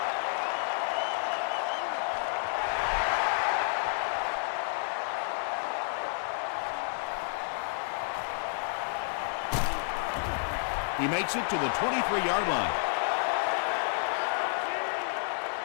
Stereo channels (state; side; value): silent; right; digital silence